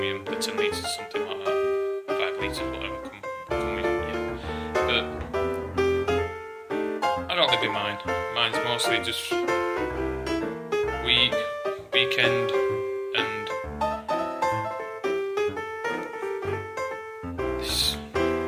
in the 10 litres or something like that, 5 litres, whatever come in. Yeah. But I don't live in mine. Mine's mostly just weekend, and this. I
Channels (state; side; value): identical; both; correlation 1.00